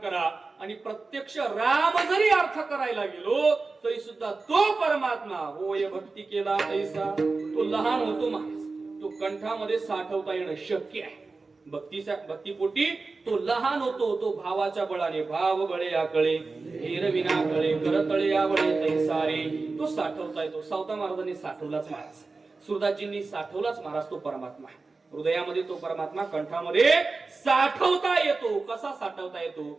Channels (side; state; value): left; quieter; 3.9 dB